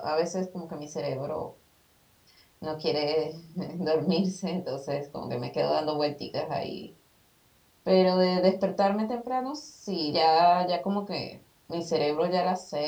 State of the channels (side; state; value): both; identical; correlation 1.00